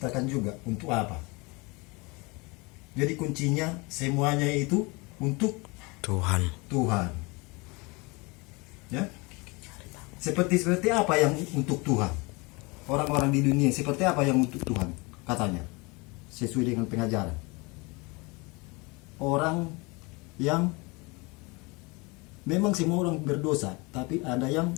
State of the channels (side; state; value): right; quieter; 26.9 dB